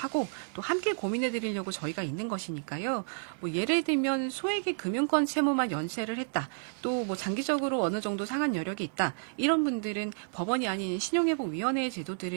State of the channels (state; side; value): silent; left; digital silence